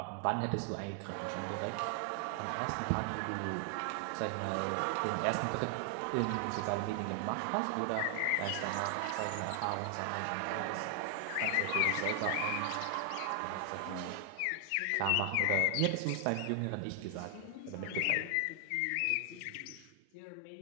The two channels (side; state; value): both; different; correlation 0.00